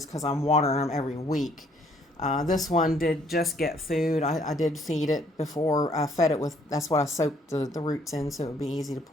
because I'm watering them every week. This one did just get food. I did feed it before I fed it with, that's what I soaked the roots in, so it would be easy to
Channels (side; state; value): both; normal; correlation 0.64